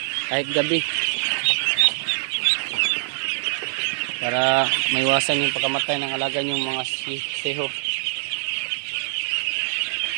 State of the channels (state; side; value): silent; left; digital silence